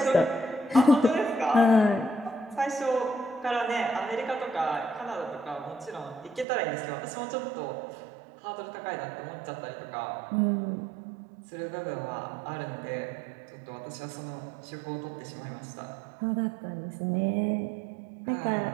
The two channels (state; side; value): drops out; left; at 6.5 s